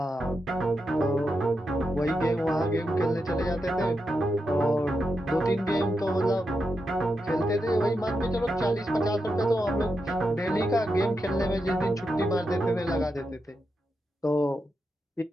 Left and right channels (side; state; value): both; normal; correlation 0.86